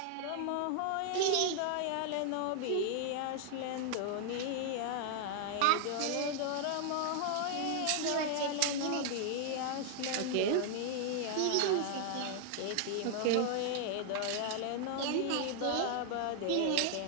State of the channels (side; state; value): both; different; correlation 0.00